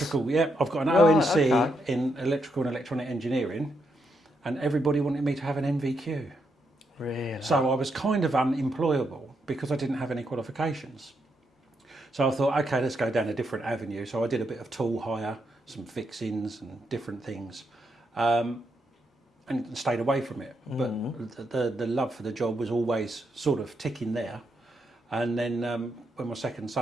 yeah. I've got an ONC in electrical and electronic engineering, and everybody wanted me to have an NVQ. Really? So I was kind of unemployable because I didn't have any qualifications. So I thought, okay, let's go down a different avenue. So I did a bit of tool hire, some fixings and different things, and stayed away from it. But the love for the job was always sort of ticking there. And then when my second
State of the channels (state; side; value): normal; both; correlation 0.80